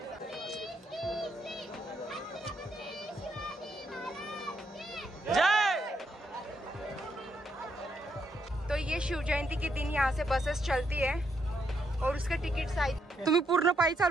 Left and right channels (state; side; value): normal; both; correlation 0.77